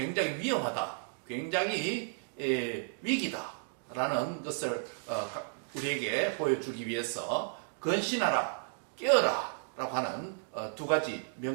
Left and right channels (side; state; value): left; silent; digital silence